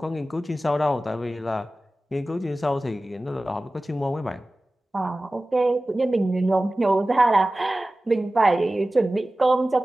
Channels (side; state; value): both; normal; correlation 0.96